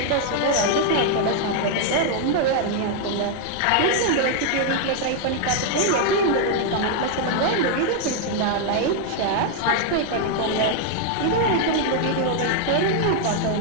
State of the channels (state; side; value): different; both; correlation 0.00